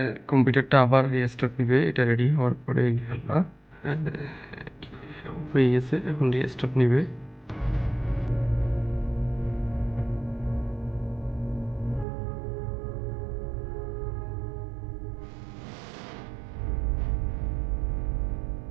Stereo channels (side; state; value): left; drops out; at 12.1 s